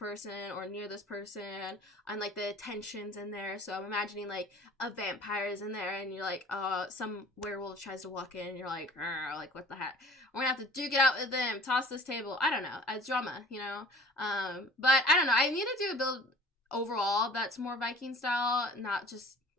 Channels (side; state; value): both; normal; correlation 0.46